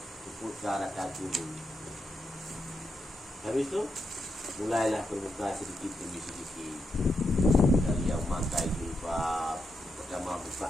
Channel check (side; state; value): both; normal; correlation 0.84